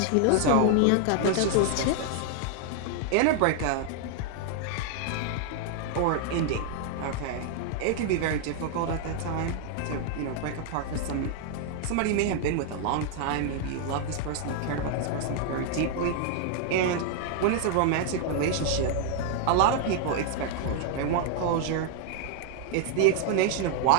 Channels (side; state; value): both; different; correlation 0.00